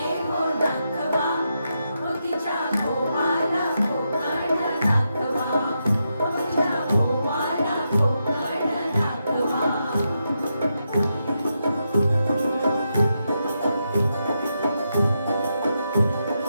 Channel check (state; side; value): inverted; both; correlation -0.84